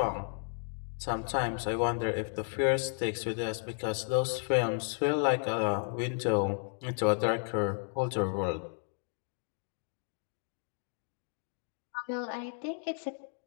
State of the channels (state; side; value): silent; right; 55 dB below the other